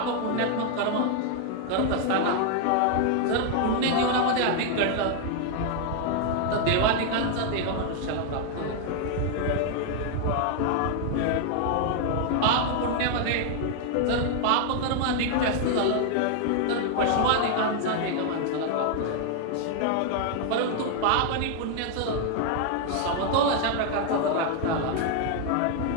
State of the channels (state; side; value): different; both; correlation 0.00